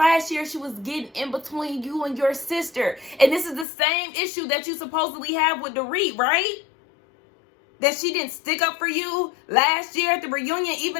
year, she was getting in between you and your sister. And this is the same issue that you supposedly have with Dorit, right? That she didn't stick up for you last year at the reunion,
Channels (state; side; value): drops out; right; at 3.7 s